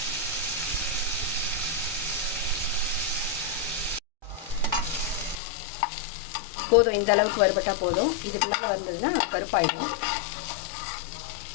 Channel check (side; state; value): right; drops out; at 5.4 s